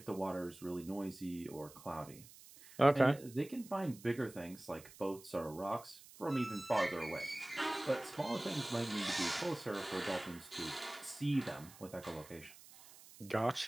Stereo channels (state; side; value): noise; right; hiss, 19 dB below the sound